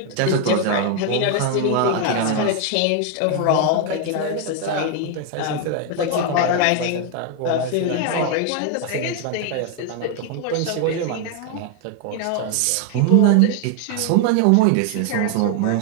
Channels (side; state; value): both; different; correlation 0.01